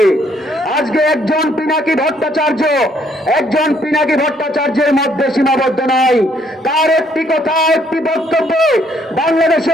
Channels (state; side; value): normal; both; correlation 0.67